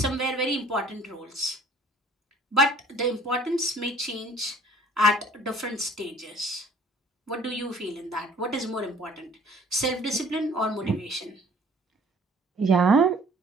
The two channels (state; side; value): normal; both; correlation 0.54